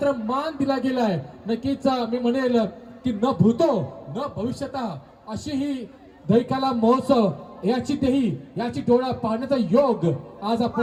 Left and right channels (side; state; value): both; identical; correlation 1.00